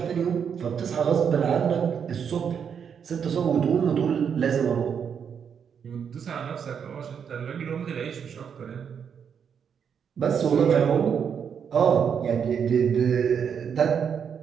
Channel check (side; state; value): left; quieter; 7.3 dB